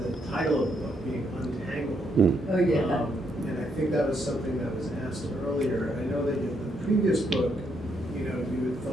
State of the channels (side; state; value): both; normal; correlation 0.76